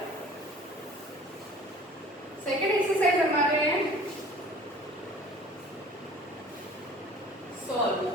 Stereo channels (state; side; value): normal; both; correlation 0.48